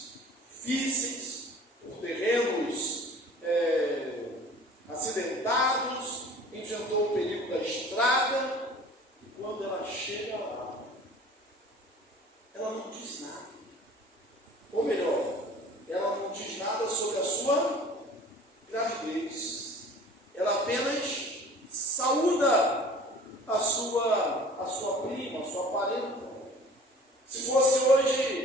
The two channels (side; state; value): both; normal; correlation 0.46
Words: difíceis, por terrenos acidentados, enfrentou o perigo da estrada, e quando ela chega lá, ela não diz nada. Ou melhor, ela não diz nada sobre a sua gravidez. Ela apenas saúda a sua prima, a sua parenta. Se fosse